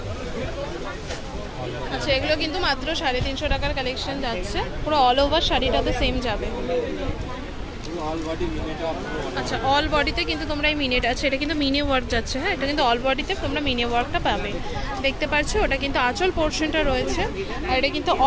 আচ্ছা, এগুলো কিন্তু মাত্র 350 টাকার কালেকশন যাচ্ছে। পুরো অল ওভার শাড়িটাতে সেম যাবে। আচ্ছা, অল বডিতে কিন্তু তোমরা এই মিনিট আছে, এটা কিন্তু মিনি ওয়ার্ক যাচ্ছে। হ্যাঁ, এটা কিন্তু অল বডিতে তোমরা মিনি ওয়ার্কটা পাবে, দেখতে পাচ্ছ। ওটা কিন্তু আঁচল পোর্শনটা রয়েছে, আর এটা কিন্তু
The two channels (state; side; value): identical; both; correlation 1.00